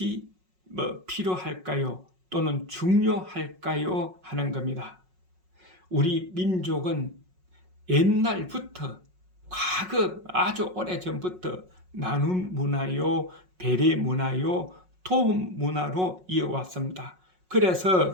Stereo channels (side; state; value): left; late; 5.4 ms